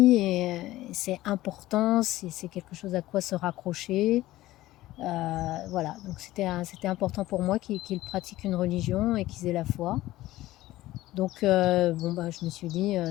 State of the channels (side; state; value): right; quieter; 16.3 dB